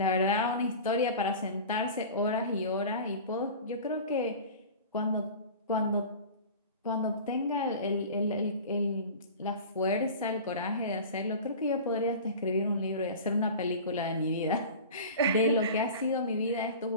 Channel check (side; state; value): both; inverted; correlation -0.36